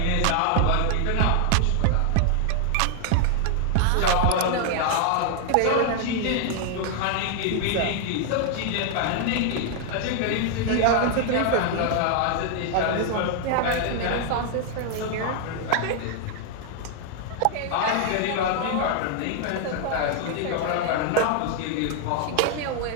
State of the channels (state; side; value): different; both; correlation 0.00